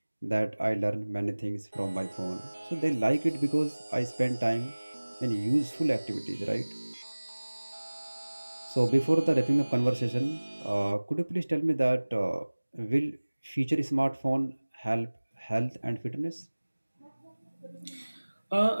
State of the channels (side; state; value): both; inverted; correlation -1.00